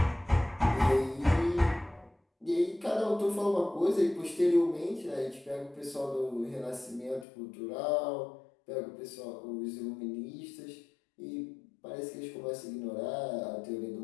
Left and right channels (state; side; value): drops out; right; at 7.2 s